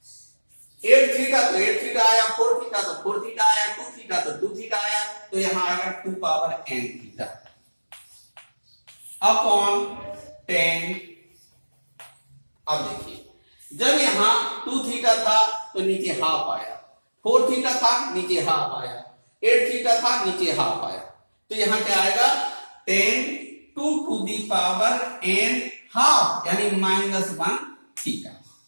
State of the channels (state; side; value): inverted; both; correlation -1.00